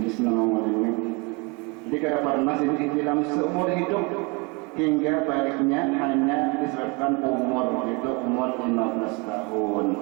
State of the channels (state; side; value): quieter; left; 28.7 dB